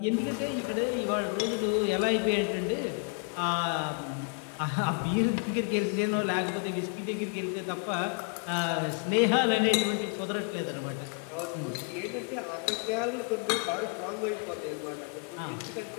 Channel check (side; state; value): right; quieter; 38.1 dB